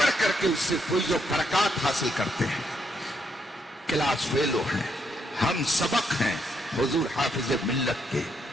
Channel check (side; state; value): both; normal; correlation 0.76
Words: کر کے اس سے فیض و برکات حاصل کرتے ہیں، کلاس فیلو ہیں، ہم سبق ہیں حضور حافظ ملت کے۔